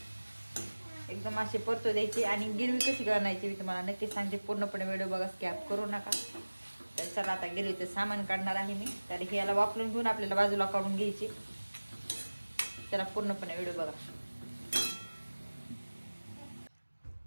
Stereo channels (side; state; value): both; inverted; correlation -1.00